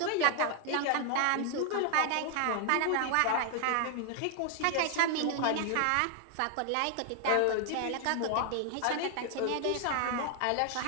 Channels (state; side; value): different; both; correlation 0.00